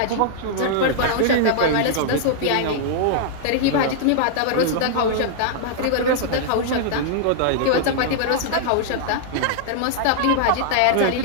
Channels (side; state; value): both; different; correlation -0.01